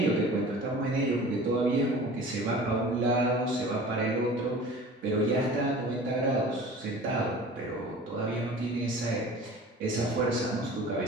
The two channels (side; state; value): both; normal; correlation 0.42